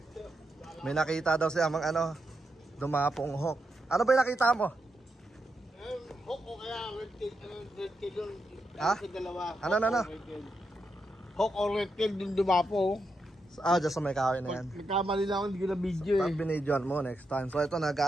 May nakita daw si Amang dumapong hawk. Ano ba yung nakita mo? Hawk o kaya red tail yun. Dalawa. Ano? Hawk o red tail dun dumapo. Dyan sa may kahoy na yan. Nagkamali lang ako, hindi ko na video Pag binidyoan mo next time. So ito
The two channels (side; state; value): both; normal; correlation 0.84